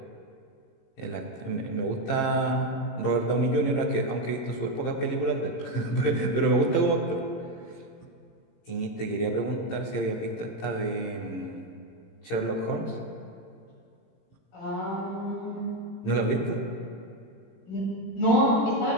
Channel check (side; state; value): right; late; 18 ms